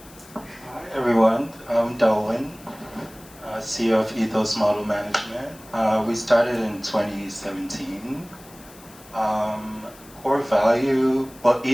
Hi everyone, I'm Delwin, CEO of Ethos Model Management. We started in 2017. core value, well,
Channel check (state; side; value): noise; left; hiss, 22 dB below the sound